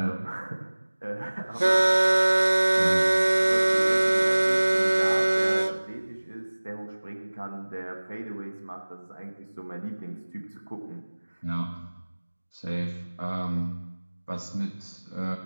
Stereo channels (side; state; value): both; inverted; correlation -1.00